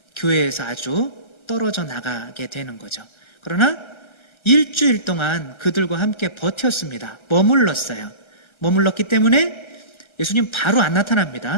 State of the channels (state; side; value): late; right; 1.3 ms